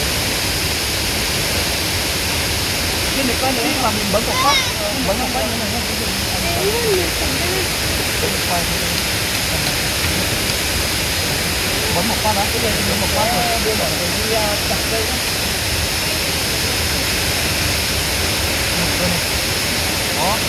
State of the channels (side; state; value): both; identical; correlation 1.00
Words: trên này quay nữa mà mình bấm một phát như này nhé. Bấm một phát đó, cái này bấm một phát rồi đưa vào đi chặt cây đó. Đó.